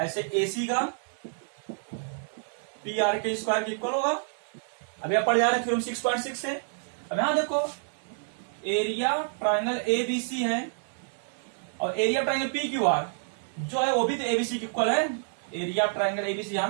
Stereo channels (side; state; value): left; silent; digital silence